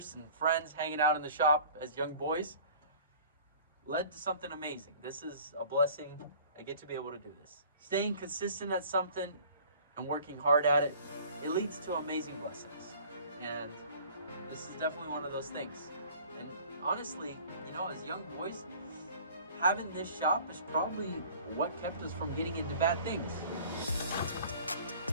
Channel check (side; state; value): both; inverted; correlation -0.47